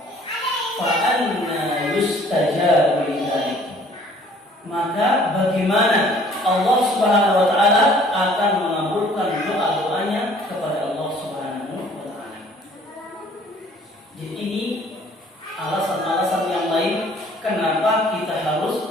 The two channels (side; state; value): both; normal; correlation 0.55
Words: Fa'anna yustajabu lidzalik. Maka bagaimana Allah Subhanahu wa Ta'ala akan mengabulkan doa-doanya kepada Allah Subhanahu wa Ta'ala. Jadi ini alasan-alasan yang lain kenapa kita